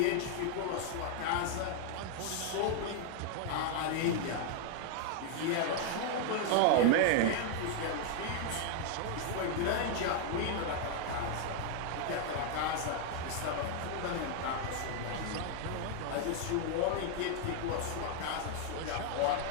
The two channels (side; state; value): both; different; correlation 0.00